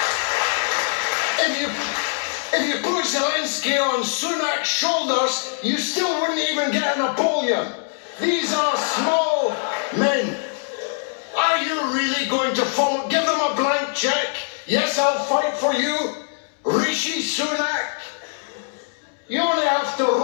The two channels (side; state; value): right; silent; 64 dB below the other